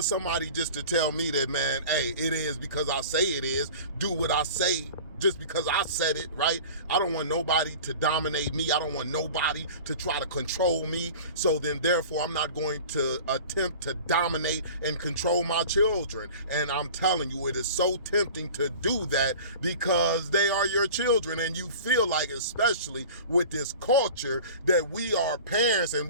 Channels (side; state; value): both; inverted; correlation -0.39